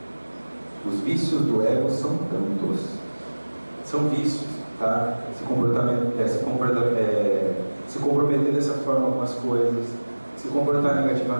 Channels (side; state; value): both; inverted; correlation -1.00